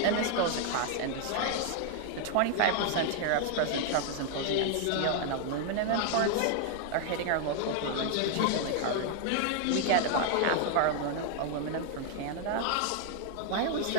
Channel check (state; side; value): different; both; correlation 0.00